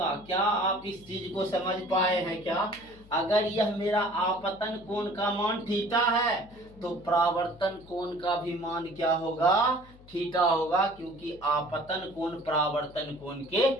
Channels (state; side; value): noise; left; hum, 23 dB below the sound